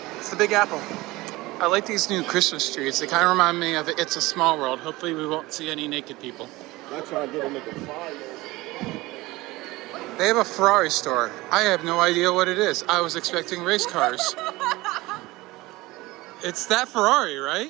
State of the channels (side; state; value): left; quieter; 20.2 dB